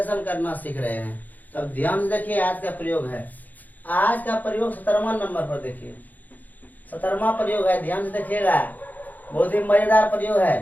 करना सीख रहे हैं। तो अब ध्यान से देखिए, आज का प्रयोग है। आज का प्रयोग 17वां नंबर पर देखिए। 17वां प्रयोग है, ध्यान से देखिएगा, बहुत ही मजेदार प्रयोग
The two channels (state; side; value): late; right; 0.082 ms